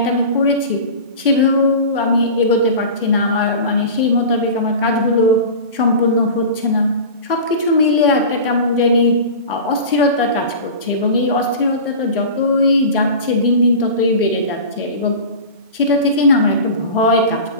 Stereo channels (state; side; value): inverted; both; correlation -0.33